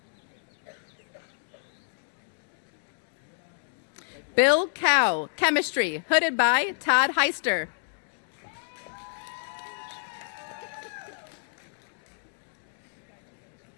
Bill Cow, chemistry, hooded by Todd Heister.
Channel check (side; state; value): right; silent; digital silence